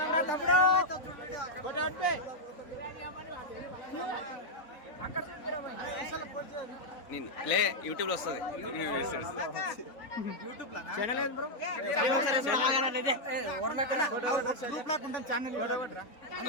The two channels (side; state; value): right; late; 3.9 ms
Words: లే యూట్యూబ్ లో వస్తుంది.